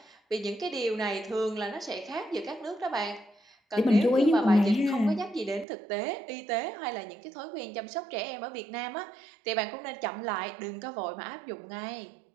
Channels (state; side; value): drops out; left; at 5.7 s